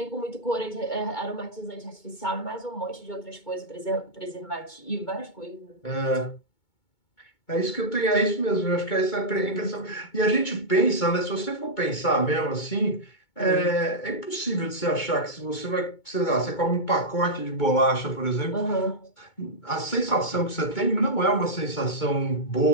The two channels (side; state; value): right; late; 2.2 ms